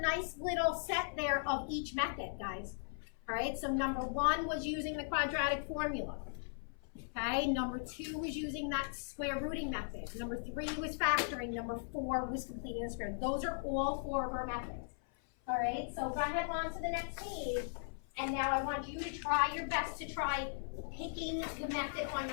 little set there of each method, guys. All right, so number 1 was using the quadratic formula. Okay, number 2 was using that square rooting method. Number 3 was factoring. Number 4 was completing the square. Those are all 4 of our methods. All right, so go ahead on to the next page. And now I want you to try your best to try picking the method on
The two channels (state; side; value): silent; right; 52 dB below the other